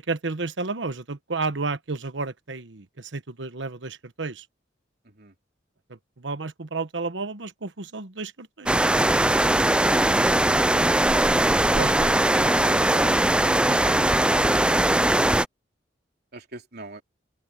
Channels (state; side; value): normal; both; correlation 0.73